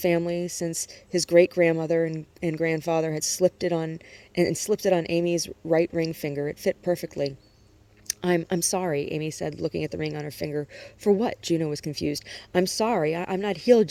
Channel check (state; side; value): identical; both; correlation 1.00